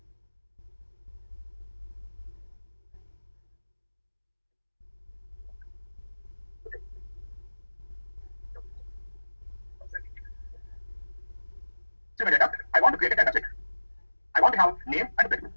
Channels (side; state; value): both; inverted; correlation -1.00